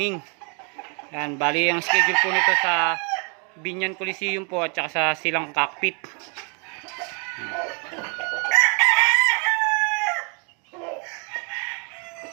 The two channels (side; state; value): left; quieter; 36.7 dB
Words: Ayan, bali ang schedule po nito sa Binyan Coliseum po at saka sa Silang Cockpit.